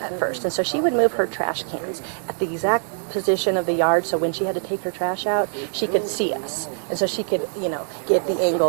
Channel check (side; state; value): left; silent; digital silence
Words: at first, and so she would move her trash cans at the exact position of the yard, so when she had to take her trash out, she could see us, and so she could get the